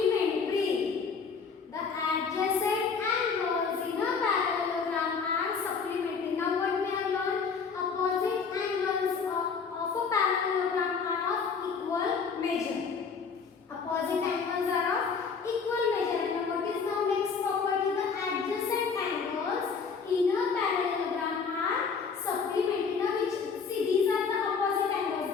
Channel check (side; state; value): right; quieter; 5.6 dB